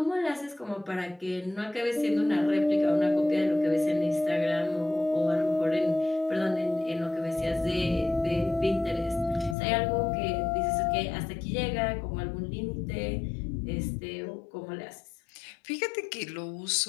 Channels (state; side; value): drops out; right; at 9.6 s